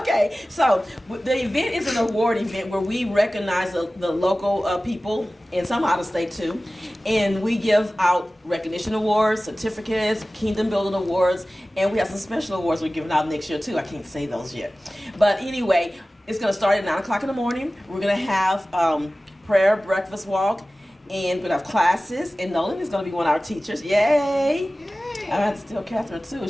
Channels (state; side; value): normal; both; correlation 0.97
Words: so the event is an award event where we recognize the local people and some out of state too, and we give out recognition awards, certificates, kingdom building awards, and we have some special awards we're giving out next year too. I can't say those yet, but anyway, it's going to start at 9 o'clock in the morning. We're going to have prayer, breakfast walk, and we're going to have classes, and Nolan is going to be one of our teachers. Yay! I have to tell Catherine too.